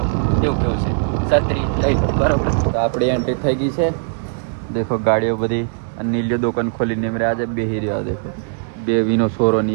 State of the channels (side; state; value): left; silent; 66 dB below the other